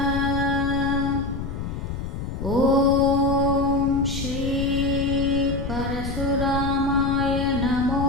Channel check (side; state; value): left; noise; rumble, 5 dB below the sound